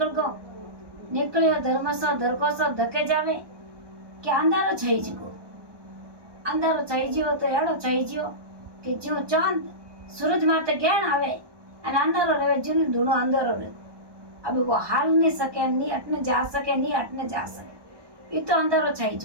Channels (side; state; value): left; late; 1.2 ms